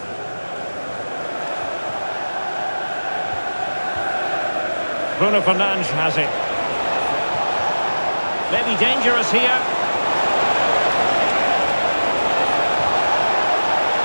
Bruno Fernandes has it. Maybe dangerous here.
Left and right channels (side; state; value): both; inverted; correlation -1.00